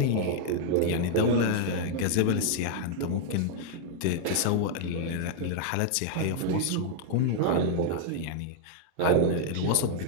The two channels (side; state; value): both; different; correlation -0.01